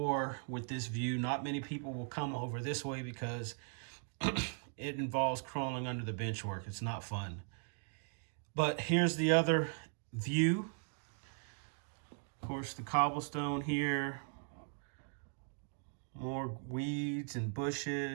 with this view, not many people will come over this way because it involves crawling under the bench work. It's not fun. But here's the other view. Of course, the cobblestone here, more weeds and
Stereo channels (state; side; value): silent; left; 52 dB below the other